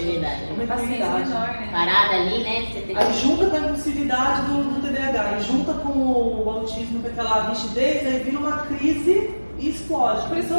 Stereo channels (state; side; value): inverted; both; correlation -1.00